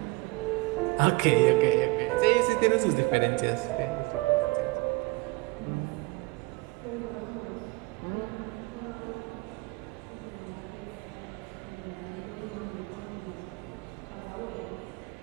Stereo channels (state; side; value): quieter; left; 24.8 dB